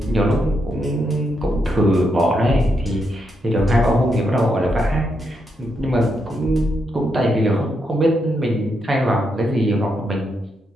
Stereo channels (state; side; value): normal; both; correlation 0.81